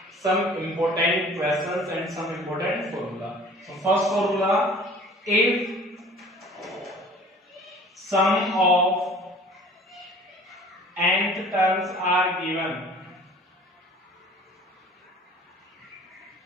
some important questions and some important formula. So, first formula: if sum of nth terms are given,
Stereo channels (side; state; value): both; normal; correlation 0.48